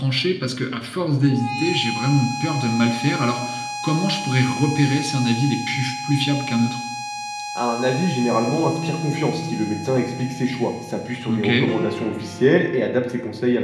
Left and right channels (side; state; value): both; identical; correlation 1.00